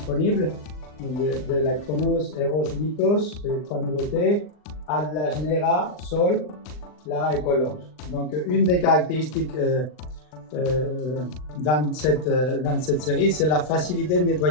de la Chronos, Eros, Mythos, les trois nouveautés, Atlas, Nera, Sol, Lara et Colors. Donc une des caractéristiques dans cette série, c'est la facilité de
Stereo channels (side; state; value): right; late; 39 ms